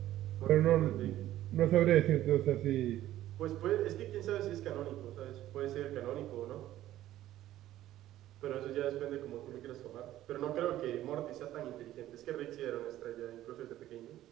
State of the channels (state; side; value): quieter; left; 13.8 dB